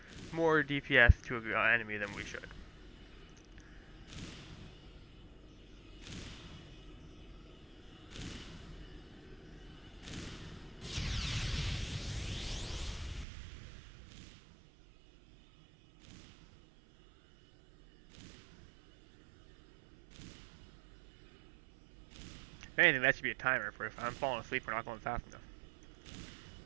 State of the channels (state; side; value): drops out; left; at 13.2 s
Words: more DPS to an enemy than we should. If anything, that should be a timer for if I'm falling asleep, we're not going fast enough.